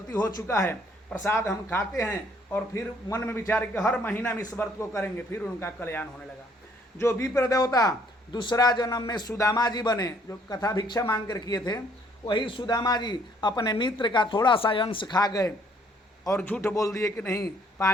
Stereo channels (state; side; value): normal; both; correlation 0.64